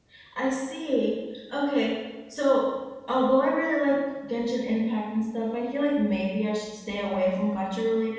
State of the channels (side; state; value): both; identical; correlation 1.00